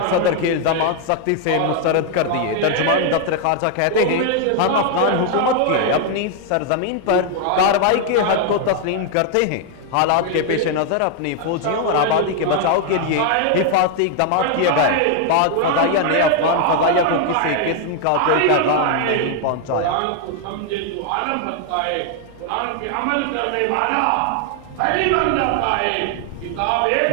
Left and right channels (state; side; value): different; both; correlation 0.00